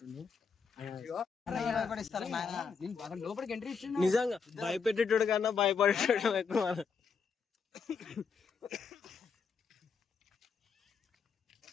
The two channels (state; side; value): quieter; right; 5.7 dB